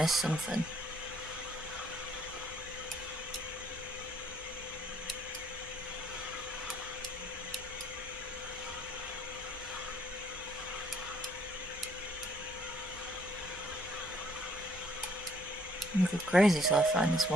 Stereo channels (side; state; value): both; normal; correlation 0.65